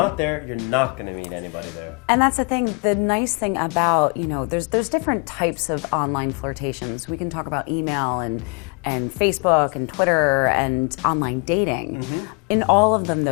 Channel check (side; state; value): right; quieter; 35.6 dB